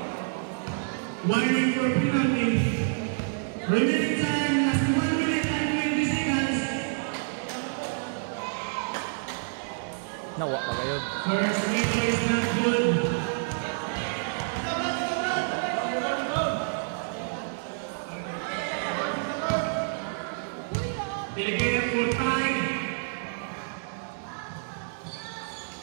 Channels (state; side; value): silent; left; digital silence